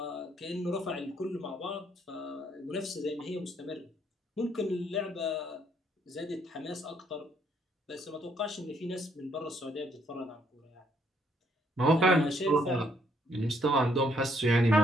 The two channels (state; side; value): normal; both; correlation 0.69